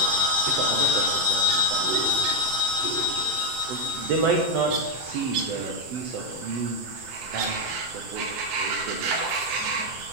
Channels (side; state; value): left; late; 7.8 ms